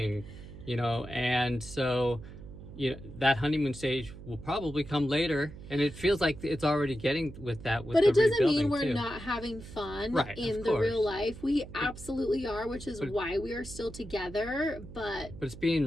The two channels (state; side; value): noise; right; hum, 15 dB below the sound